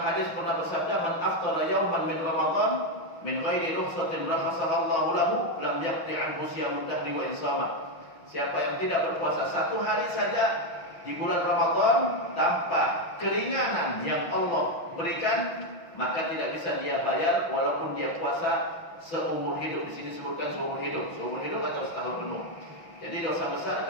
pernah bersabda, "Man aftara yauman min Ramadan min ghairi rukhsatin rakhasaha Allahu lahu lam yaqti anhu siyamud dahri wa insama." Siapa yang tidak berpuasa satu hari saja di bulan Ramadan tanpa keringanan yang Allah berikan, maka tidak bisa dia bayar walaupun dia puasa seumur hidup. Di sini sebutkan seumur hidup atau setahun penuh. Jadi dosa besar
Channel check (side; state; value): right; late; 6.0 ms